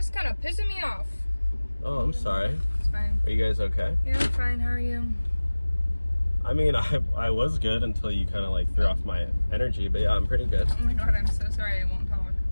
kind of pissing me off. Oh, I'm sorry. It's fine. Are you guys okay? Yeah, I'm fine. How are you? I mean, I was good until you kind of like threw off my energy, but yeah, I'm pretty good. Oh my god, I'm so sorry. I won't talk.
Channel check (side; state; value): both; inverted; correlation -1.00